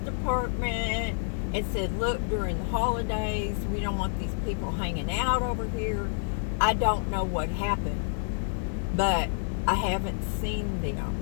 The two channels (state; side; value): silent; right; digital silence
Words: and said, look, during the holidays, we don't want these people hanging out over here. I don't know what happened, but I haven't seen them.